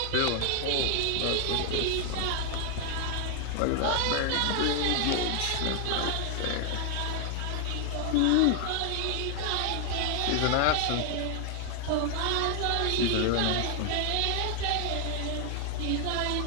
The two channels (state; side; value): different; both; correlation 0.00